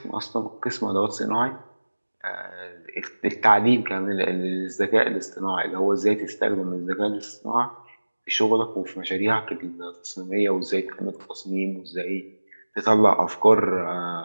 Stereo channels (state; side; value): inverted; both; correlation -1.00